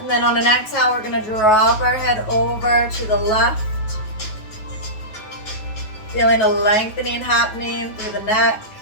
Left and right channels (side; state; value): right; late; 9.3 ms